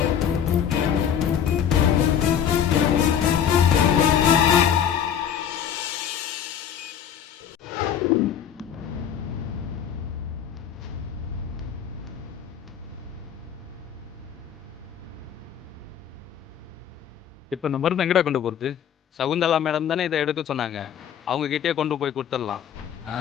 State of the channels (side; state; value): right; quieter; 8.8 dB